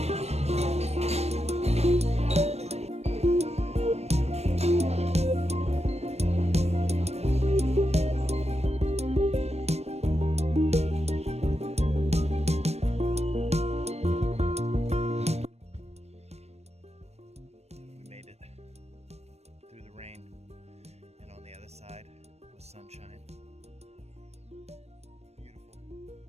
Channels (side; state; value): left; late; 0.31 ms